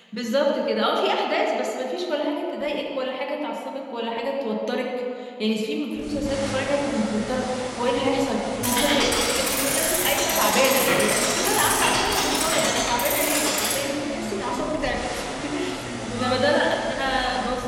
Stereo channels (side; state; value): both; identical; correlation 1.00